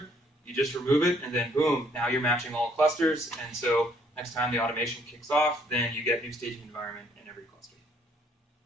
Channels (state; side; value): normal; both; correlation 0.66